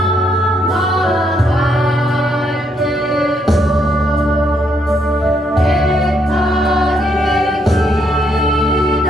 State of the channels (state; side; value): normal; both; correlation 0.74